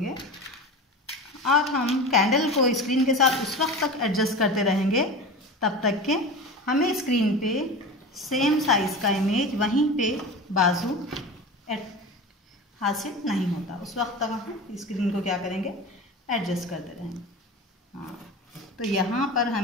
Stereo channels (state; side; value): normal; both; correlation 0.30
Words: और हम कैंडल को स्क्रीन के साथ उस वक्त तक एडजस्ट करते रहेंगे तब तक के हमें स्क्रीन पे सेम साइज़ का इमेज वहीं पे बाजू हासिल नहीं होता। उस वक्त तक हम स्क्रीन को क्या करेंगे, एडजस्ट करते रहेंगे। हाँ, तो यहाँ पर